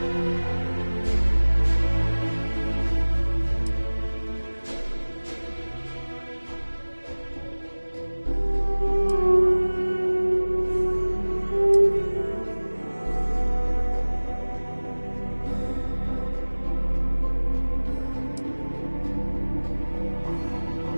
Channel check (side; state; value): both; inverted; correlation -1.00